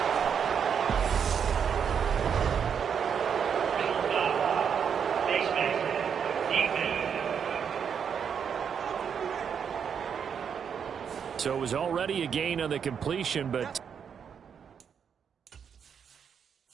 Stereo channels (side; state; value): left; quieter; 7.3 dB